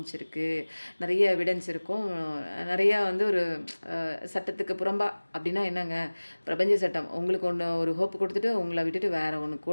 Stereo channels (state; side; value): inverted; both; correlation -1.00